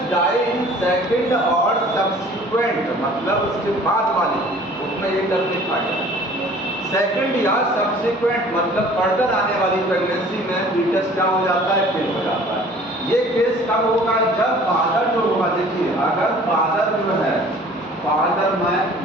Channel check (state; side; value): normal; both; correlation 0.50